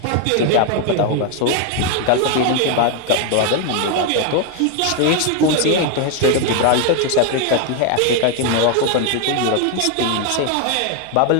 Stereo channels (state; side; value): different; both; correlation 0.01